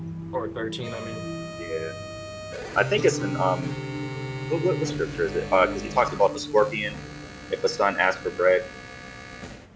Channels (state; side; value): identical; both; correlation 1.00